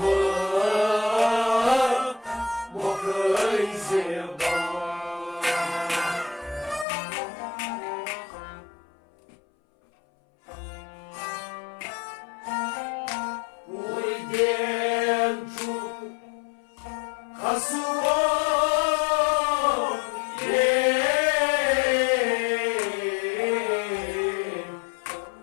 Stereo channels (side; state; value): right; drops out; at 6.9 s